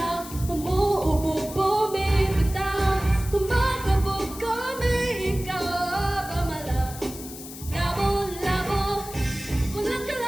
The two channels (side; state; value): left; noise; hiss, 13 dB below the sound